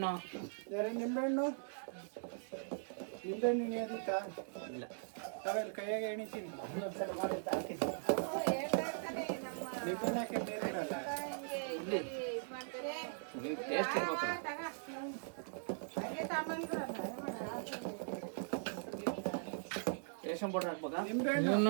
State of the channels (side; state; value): left; silent; digital silence